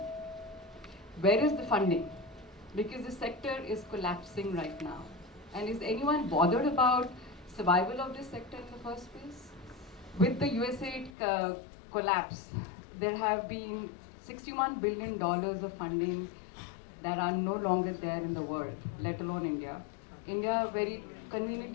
Where is the funding? Because the sector is collapsing right now. And is anyone bothered about survival of this sector in the first place? With the USAID collapse, there have been $61 billion of funding that are no longer there in the world, let alone India. India very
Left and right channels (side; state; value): right; drops out; at 11.2 s